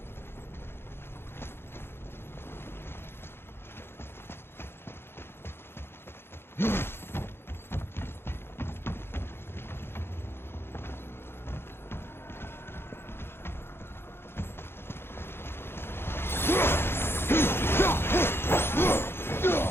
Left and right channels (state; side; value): late; right; 0.11 ms